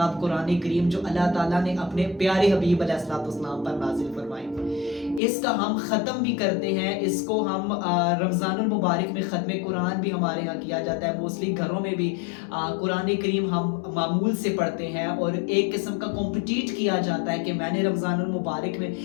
कुरान करीम, जो अल्लाह ताला ने अपने प्यारे हबीब अलैहिस्सलाम पर नाजिल फरमाई, इसका हम ख़त्म भी करते हैं। इसको हम रमज़ानुल मुबारक में ख़त्म कुरान भी हमारे यहाँ किया जाता है। मोस्टली घरों में भी कुरान करीम हम मामूल से पढ़ते हैं और एक किस्म का कॉम्पिटिट किया जाता है कि मैंने रमज़ानुल मुबारक में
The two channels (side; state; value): right; drops out; at 5.2 s